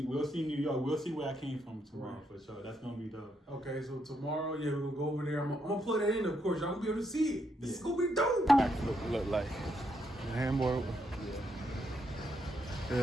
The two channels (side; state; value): both; normal; correlation 0.78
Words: New York. We'll see where I came from tomorrow for sure. That's gonna be dope. Okay, so tomorrow, we're gonna go over there. I'm gonna plug that in, of course. Y'all gonna be able to see it. This is gonna be dope. Look like the handboard.